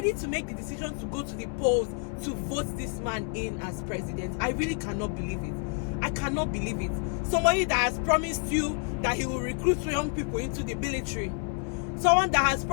to make the decision to go to the polls to vote this man in as president. I really cannot believe it. I cannot believe it. Somebody that has promised you that he will recruit young people into the military. Someone that has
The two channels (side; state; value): right; quieter; 39.1 dB